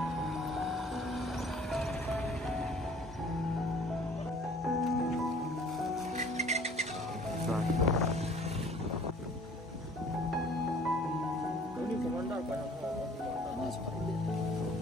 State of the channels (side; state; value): both; normal; correlation 0.52